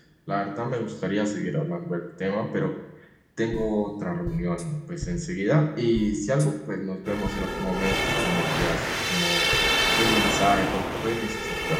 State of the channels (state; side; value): identical; both; correlation 1.00